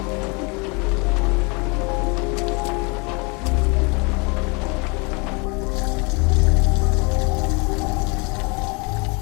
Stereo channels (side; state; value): right; quieter; 30.7 dB